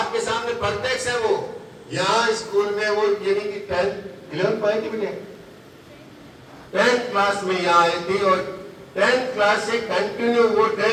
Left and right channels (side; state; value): both; identical; correlation 1.00